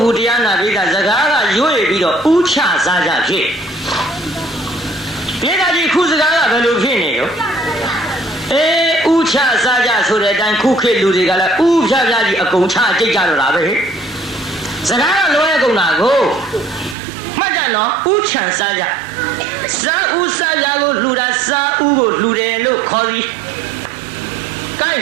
ဘူးတရားနာပိဋကစကားကရွေ့ပြီးတော့ဥချစားကြဖြစ်ပိဋကကြီးခုစကားကဘယ်လိုဖြစ်နေရောဥချစားကြဆိုတဲ့အတိုင်းခုခေတ်လူတွေကလည်းဥဖြားဖြားကြီးအကုန်ချကြိတ်ကြတော့တာပဲစကားကလွဲကုန်တာကိုမှတ်ကြနော်ဥချမ်းစားကြစားဥစားကြကိုလှူတာစားဥကိုလှူတယ်လို့ခေါ်ပြီးကဲ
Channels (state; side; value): drops out; left; at 16.9 s